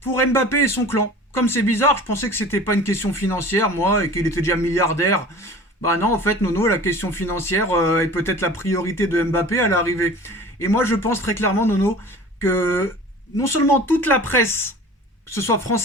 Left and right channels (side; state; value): both; normal; correlation 0.41